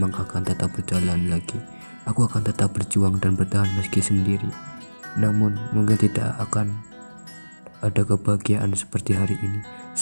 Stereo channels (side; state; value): both; inverted; correlation -1.00